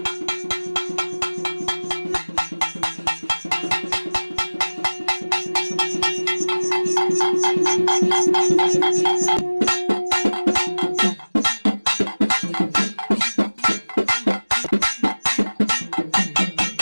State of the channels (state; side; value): inverted; both; correlation -1.00